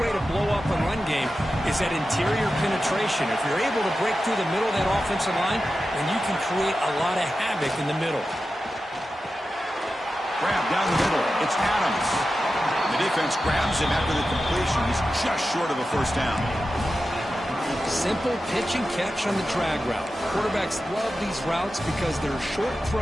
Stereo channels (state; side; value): normal; both; correlation 0.92